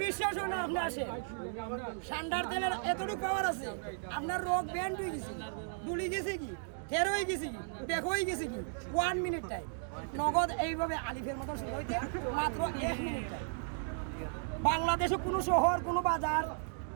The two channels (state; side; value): silent; left; digital silence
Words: বিশ্বাস হয় না আপনি আসেন সান্ডার তেলের এতটুকু পাওয়ার আছে আপনার রোগ ব্যান্ড হয়ে গেছে দুলি গেছে কি ফের হয়ে গেছে কি দেখো হয়ে গেছে কি 1 মিনিট টাইম নগদ এইভাবে আলিফের মতো শুরু হইতে মাত্র 1 মিনিট টাইম বাংলাদেশে কোনো শহর কোনো বাজার